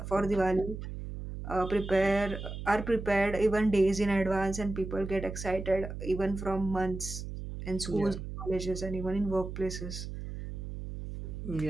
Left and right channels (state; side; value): noise; right; hum, 8 dB below the sound